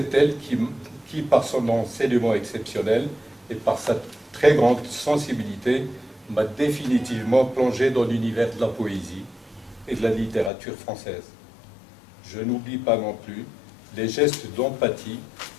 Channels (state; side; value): drops out; right; at 10.5 s